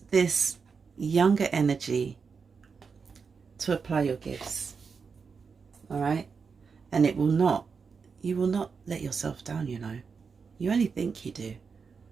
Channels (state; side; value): quieter; left; 5.5 dB